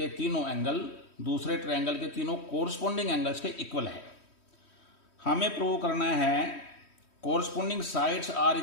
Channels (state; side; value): late; right; 3.1 ms